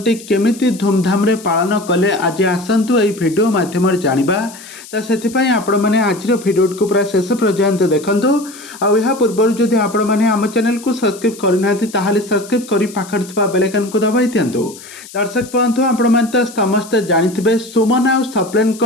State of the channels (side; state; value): left; noise; hiss, 18 dB below the sound